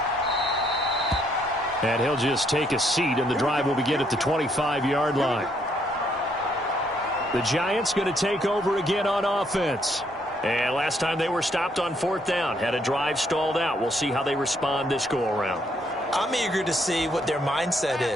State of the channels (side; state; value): both; normal; correlation 0.71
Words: And he'll just take a seat, and the drive will begin at the 25-yard line. The Giants going to take over again on offense. And last time they were stopped on 4th down, had a drive stalled out. We'll see how they respond this go-around. I'm eager to see what their mindset